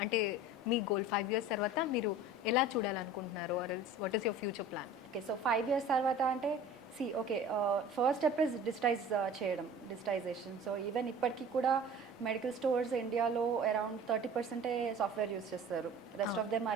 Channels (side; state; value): both; normal; correlation 0.42